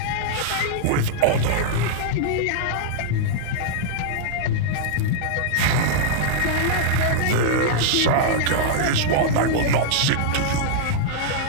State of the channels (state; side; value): different; both; correlation -0.01